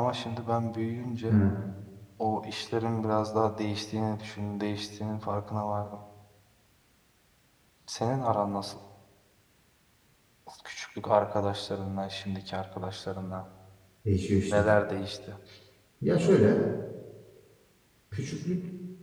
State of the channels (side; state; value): both; identical; correlation 1.00